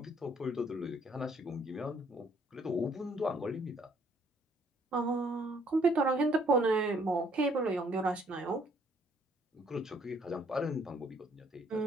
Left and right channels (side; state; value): both; normal; correlation 0.64